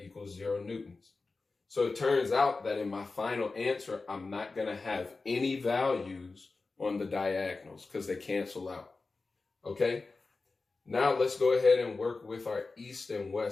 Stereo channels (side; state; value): right; quieter; 3.9 dB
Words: equal 0 newtons. So it turns out that in my final answer, I'm not going to have any values on the diagonals because they cancel out. Okay. Now let's go ahead and work with our east and